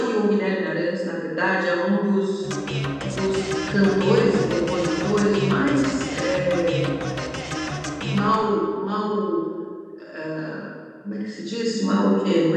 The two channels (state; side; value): identical; both; correlation 1.00